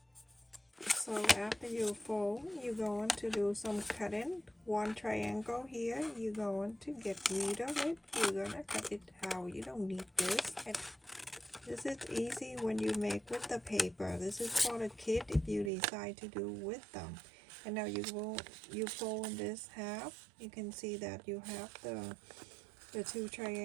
So after you fold, you're going to do some cutting. One triangle here, you're going to get rid of it. You're gonna cut it out. You don't need this. This is easy when you make with the paper. This is for the kit if you decide to do with them. And now you fold this half. You can see that you have the two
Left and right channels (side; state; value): left; drops out; at 15.7 s